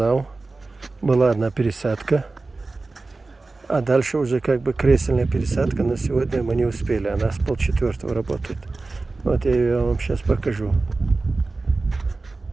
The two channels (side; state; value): left; quieter; 3.5 dB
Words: Была одна пересадка. А дальше уже как бы кресельная пересадка. Но сегодня мы не успели. Она с 3:30 работает. Вот я ее вам сейчас покажу.